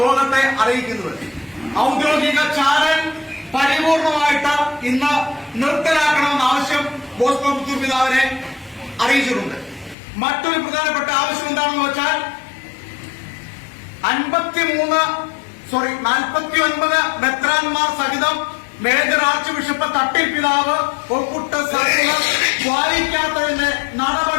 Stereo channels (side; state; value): right; drops out; at 10.0 s